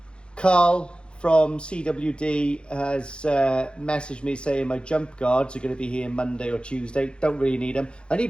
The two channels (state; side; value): late; right; 0.055 ms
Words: Carl from CWD has messaged me saying my jump guards are going to be here Monday or Tuesday. Don't really need them. I